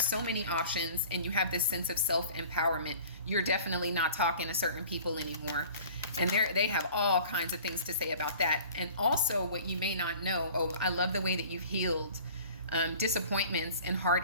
many options, and you have this sense of self-empowerment. You're definitely not talking to certain people anymore, and they have all kinds of things to say about that. And also, what you may not know, I love the way that you've healed disappointments and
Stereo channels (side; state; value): both; inverted; correlation -0.46